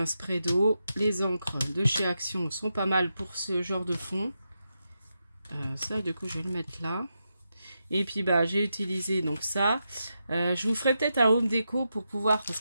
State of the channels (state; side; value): inverted; both; correlation -0.86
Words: spray d'eau. Les encres de chez Action sont pas mal pour ce genre de fond. Ça, du coup, je vais le mettre là. Et puis, j'ai utilisé donc ça. Je vous ferai peut-être un home déco pour pouvoir... Parce